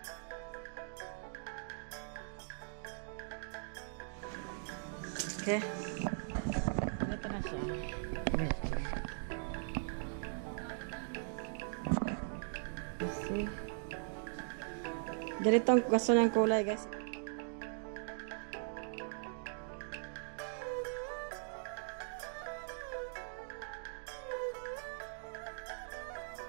Okay. Ito na siya. Kasi ganito ang gusto ng kulay guys.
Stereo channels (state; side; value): silent; left; digital silence